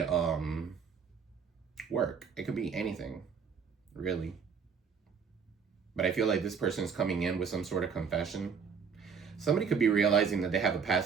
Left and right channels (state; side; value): quieter; left; 6.2 dB